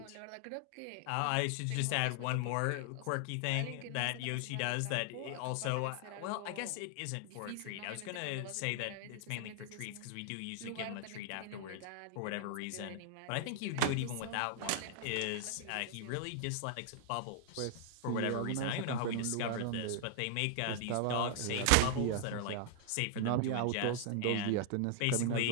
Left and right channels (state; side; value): different; both; correlation 0.00